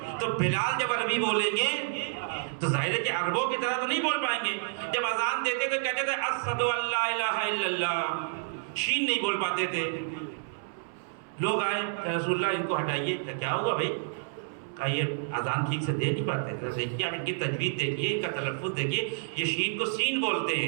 تو بلال جب عربی بولیں گے تو ظاہر ہے کہ عربوں کی طرح تو نہیں بول پائیں گے. جب اذان دیتے تو کہتے تھے اشہد ان لا الہ الا اللہ، شین نہیں بول پاتے تھے. لوگ آئے کہ رسول اللہ ان کو ہٹائیے. کیا ہوا بھائی؟ کہا یہ اذان ٹھیک سے دے نہیں پاتے. دیکھیے آپ ان کی تجوید دیکھیے، ان کا تلفظ دیکھیے، یہ شین کو سین بولتے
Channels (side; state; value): left; silent; 58 dB below the other